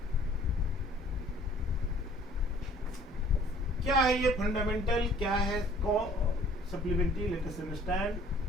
क्या है ये, फंडामेंटल क्या है supplementary, let us understand.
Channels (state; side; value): normal; both; correlation 0.55